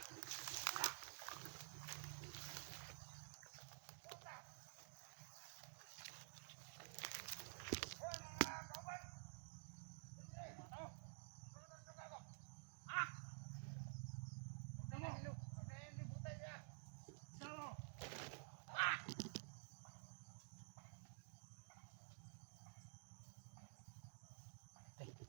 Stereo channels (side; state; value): left; silent; digital silence